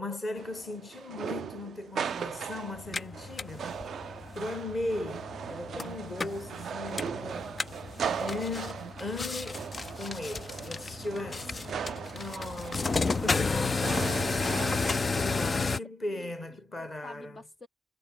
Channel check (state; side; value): normal; both; correlation 0.82